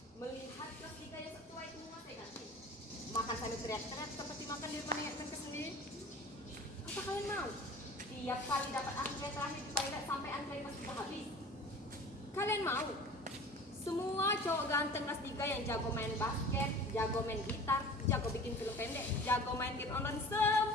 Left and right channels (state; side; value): normal; both; correlation 0.41